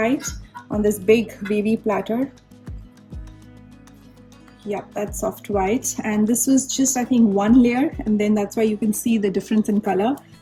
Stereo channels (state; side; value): identical; both; correlation 1.00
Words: on this big wavy platter. Yeah, that's soft white, and this was just, I think, 1 layer, and then that's why you can see the difference in color.